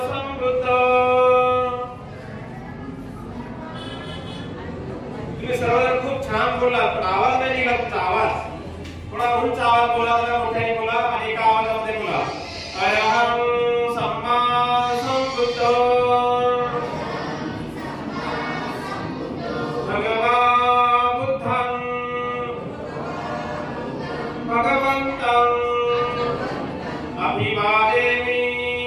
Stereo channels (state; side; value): identical; both; correlation 1.00